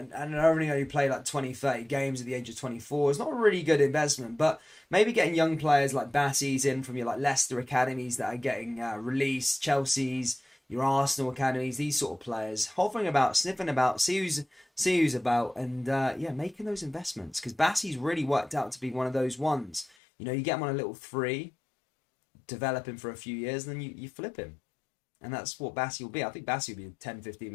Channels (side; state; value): right; drops out; at 19.9 s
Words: only play like 20, 30 games at the age of 24 is not a really good investment, but maybe getting young players like Bassey's in from your like Leicester academies that are getting released, Chelsea's, your Arsenal academies, these sort of players, hovering about, sniffing about, see who's about, and yeah, making those investments, because Bassey's really worked out to be one of those ones. You know, you get him on a little free, develop him for a few years, and then you flip him. And that's what Bassey will be. I think Bassey will be a 10, 15